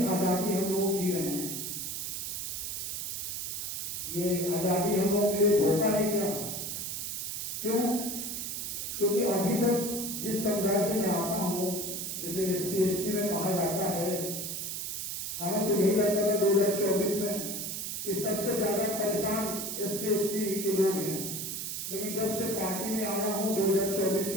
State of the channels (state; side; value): noise; right; hiss, 4 dB below the sound